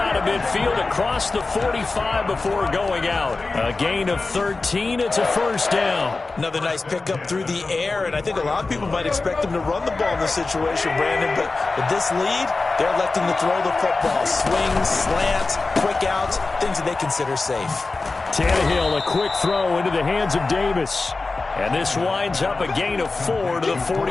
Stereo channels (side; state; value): right; quieter; 3.7 dB